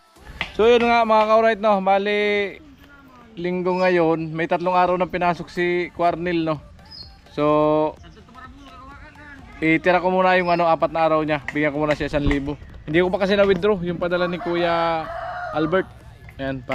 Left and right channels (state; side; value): identical; both; correlation 1.00